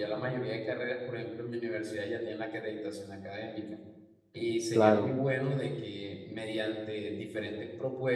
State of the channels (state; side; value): identical; both; correlation 1.00